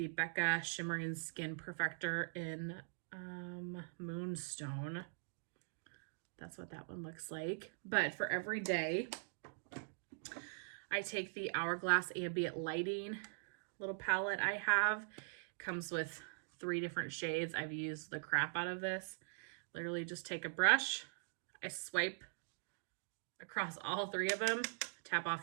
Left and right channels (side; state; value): left; silent; digital silence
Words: Becca Shimmering Skin Perfector in Moonstone. That's what that one looks like. But for every day, I take the Hourglass Ambient Lighting little palette I have. Comes with 3 different shades. I've used the crap out of this. Literally just take a brush, I swipe across all 3 of them, tap off